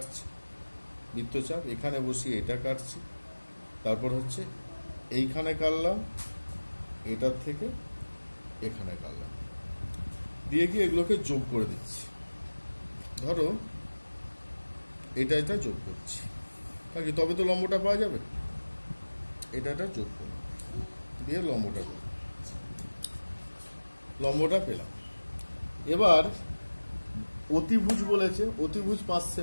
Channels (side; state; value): both; inverted; correlation -1.00